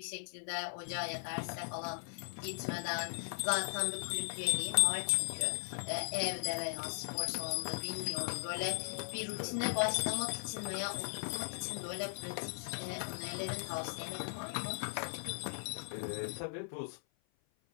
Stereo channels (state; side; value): silent; right; 52 dB below the other